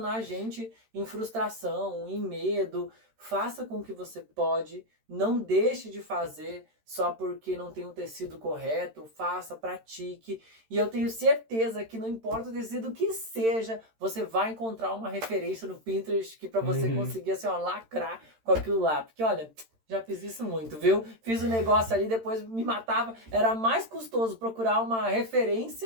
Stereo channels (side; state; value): left; late; 13 ms